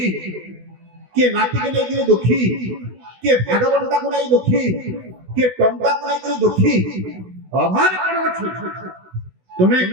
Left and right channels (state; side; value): late; left; 16 ms